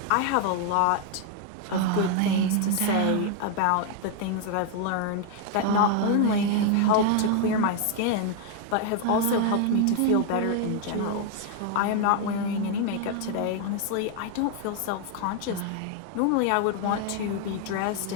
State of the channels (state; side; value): different; both; correlation 0.00